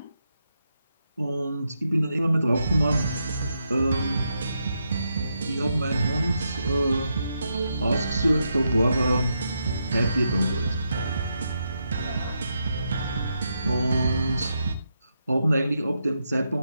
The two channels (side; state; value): both; inverted; correlation -0.83